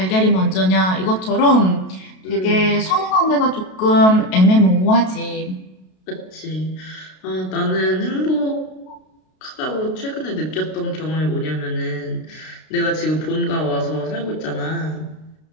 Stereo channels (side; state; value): right; late; 32 ms